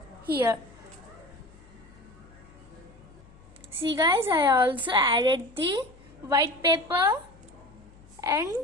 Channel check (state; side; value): noise; left; hum, 25 dB below the sound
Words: here. See guys, I also added the white paper and